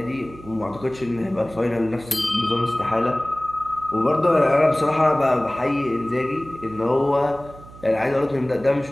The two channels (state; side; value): noise; right; hum, 19 dB below the sound